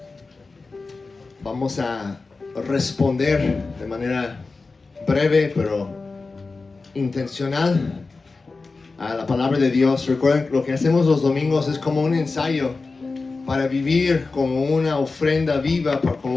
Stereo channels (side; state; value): right; quieter; 3.9 dB